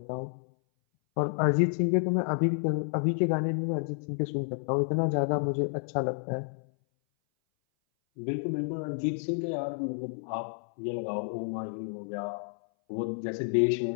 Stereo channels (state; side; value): silent; right; 58 dB below the other